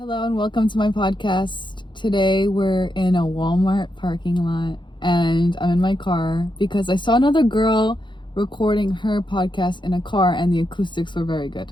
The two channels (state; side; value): late; right; 0.23 ms